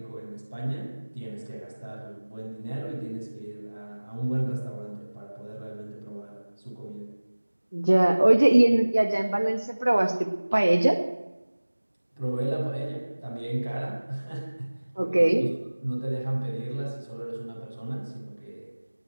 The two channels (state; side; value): inverted; both; correlation -1.00